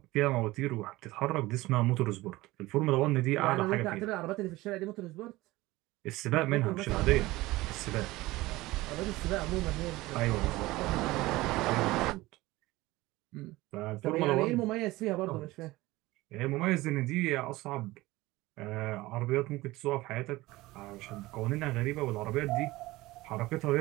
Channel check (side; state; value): left; quieter; 19.2 dB